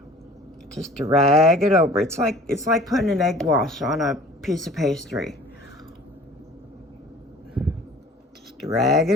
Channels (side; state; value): both; normal; correlation 0.47